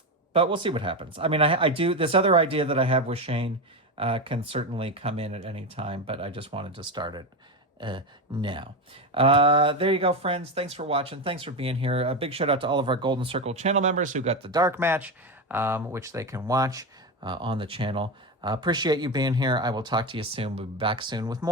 But we'll see what happens. I mean, I do this other idea that I have with Shayne can certainly come in at any time, but I just wanted to start it now. There you go, friends. Thanks for watching. Thanks for being here. A big shout out to all of our Golden Circle channel members who got the dark match, which they can watch on the channel. Appreciate you being here. I will talk to you soon. We'll be back soon with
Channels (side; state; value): both; normal; correlation 0.16